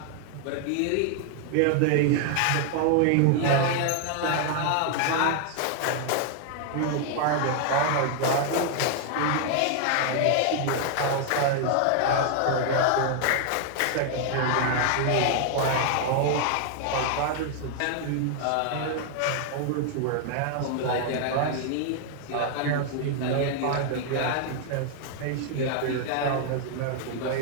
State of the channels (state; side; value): different; both; correlation 0.00